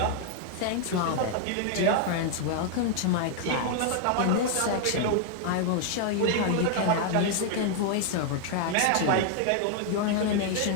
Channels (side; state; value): both; different; correlation 0.00